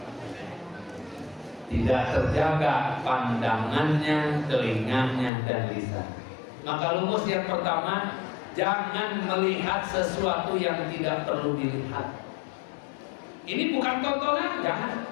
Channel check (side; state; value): right; drops out; at 5.3 s